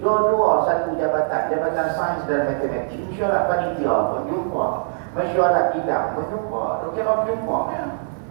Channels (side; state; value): left; silent; digital silence